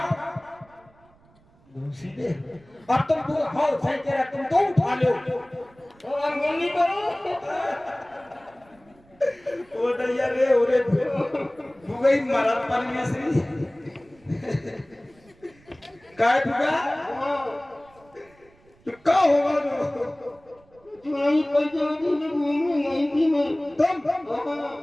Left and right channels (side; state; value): right; noise; rumble, 30 dB below the sound